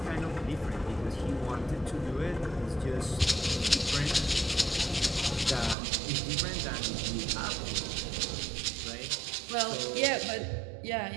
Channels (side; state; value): left; drops out; at 5.8 s